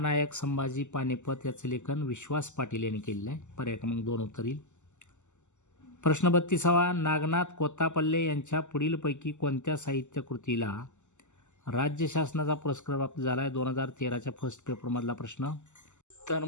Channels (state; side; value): late; right; 0.84 ms